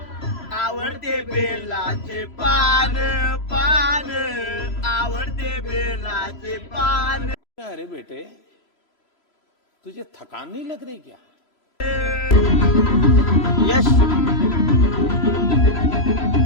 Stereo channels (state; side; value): late; right; 3.0 ms